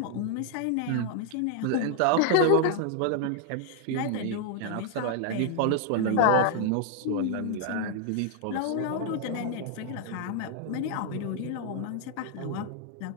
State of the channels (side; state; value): both; different; correlation 0.00